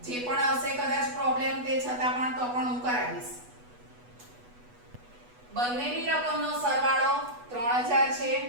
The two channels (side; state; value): left; late; 8.2 ms